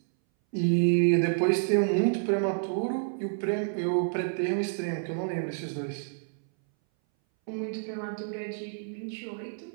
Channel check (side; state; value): left; silent; 59 dB below the other